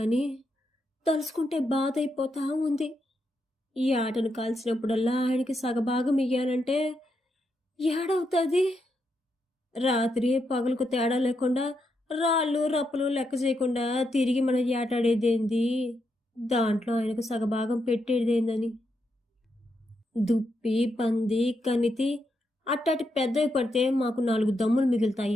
తలుసుకుంటే బాధ అయిపోతా ఉంది. ఈ ఆటను కాల్చినప్పుడల్లా ఆయనకి సగభాగం ఇయ్యాలంటే ఏడవుతుంది, రాత్రి పగలకు తేడా లేకుండా రాళ్ళు రప్పులు లెక్క చేయకుండా తిరిగి మనం ఏటాడేదేంది, దాంట్లో ఆయనకు సగభాగం పెట్టేదేందని. దుప్పి పంది కనితి అట్టాటి పెద్దవి పడితే మాకు 4 దమ్ములు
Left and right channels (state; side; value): normal; both; correlation 0.82